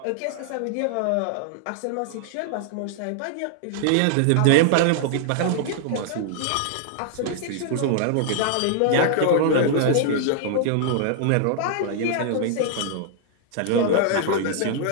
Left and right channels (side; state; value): both; different; correlation -0.01